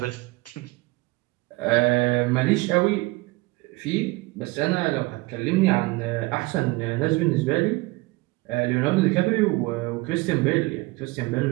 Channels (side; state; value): left; quieter; 22.8 dB